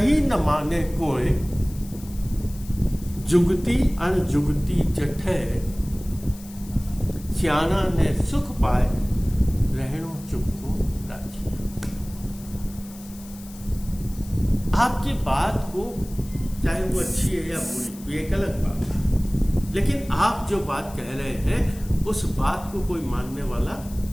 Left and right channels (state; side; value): noise; left; hiss, 19 dB below the sound